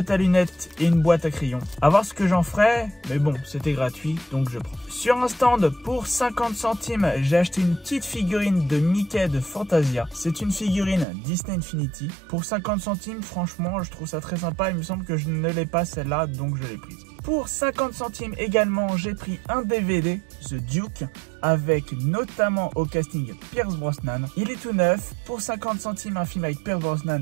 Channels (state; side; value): drops out; left; at 11.1 s